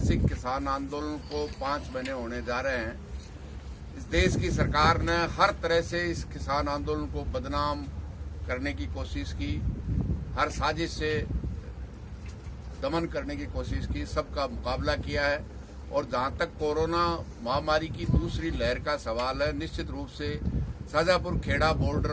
किसान आंदोलन को 5 महीने होने जा रहे हैं। इस देश की सरकार ने हर तरह से इस किसान आंदोलन को बदनाम करने की कोशिश की, हर साजिश से दमन करने की कोशिश की, सबका मुकाबला किया है। और जहां तक कोरोना महामारी की दूसरी लहर का सवाल है, निश्चित रूप से शाजापुर खेड़ा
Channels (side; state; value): both; identical; correlation 1.00